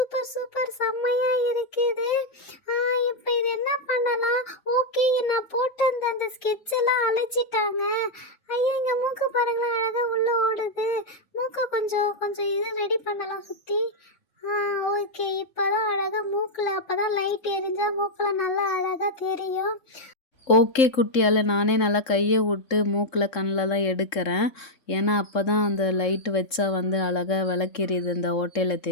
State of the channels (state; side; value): late; right; 3.5 ms